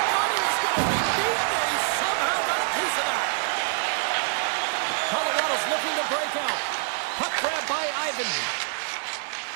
thought he was going to be beaten, and he somehow got a piece of that. Colorado's looking to break out. Puck grab by Ivan.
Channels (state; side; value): silent; left; digital silence